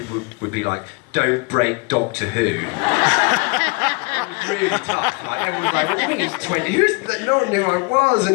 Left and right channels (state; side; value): quieter; right; 29.9 dB